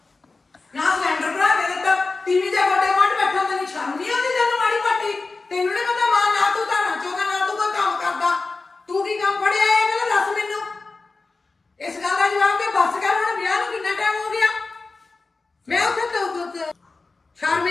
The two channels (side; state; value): right; quieter; 3.8 dB